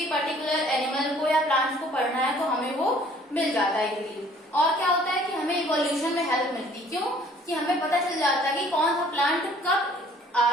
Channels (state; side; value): normal; both; correlation 0.56